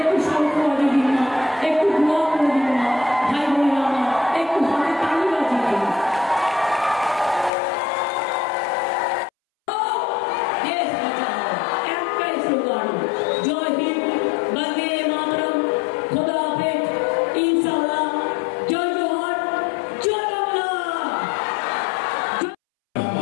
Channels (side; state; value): right; drops out; at 7.5 s